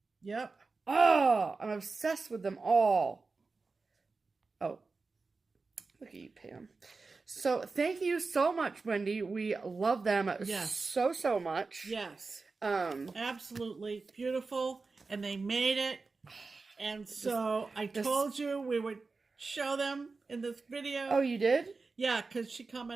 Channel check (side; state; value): left; quieter; 4.1 dB